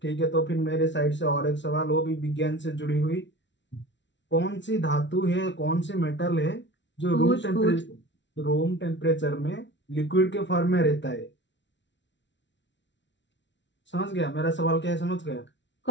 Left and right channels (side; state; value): right; late; 0.52 ms